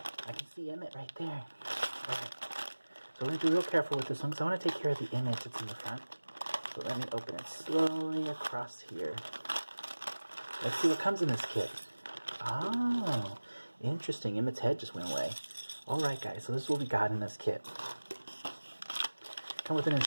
I can see Emmet right there. Right. So we're going to be real careful with this one because I want to take care of the image that's in the front. So let me open it slowly across here. Let's see what comes in this kit. Oh, interesting. Emmet's head just went away. Alright guys, so this is what we got in this kit. Come with an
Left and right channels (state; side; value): inverted; both; correlation -1.00